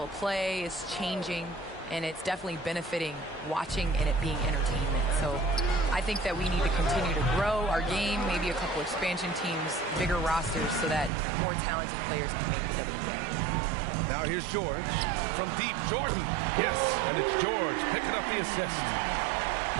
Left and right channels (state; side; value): drops out; left; at 11.1 s